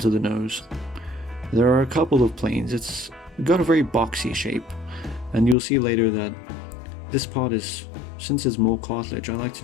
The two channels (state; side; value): drops out; right; at 5.6 s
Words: of the nose, there are a couple of planes. It's got a very boxy shape. And you'll see later that this part is, since it's more cartilage, I like to